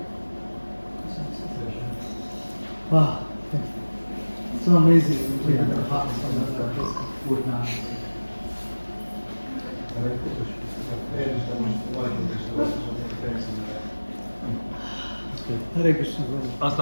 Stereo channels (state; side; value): inverted; both; correlation -1.00